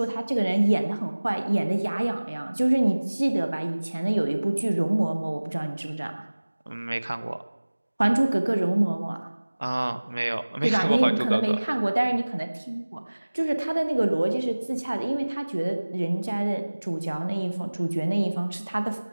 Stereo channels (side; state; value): both; inverted; correlation -1.00